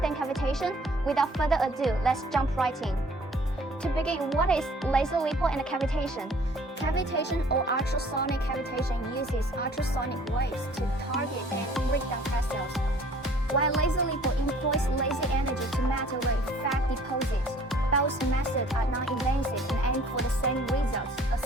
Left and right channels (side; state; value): both; normal; correlation 0.54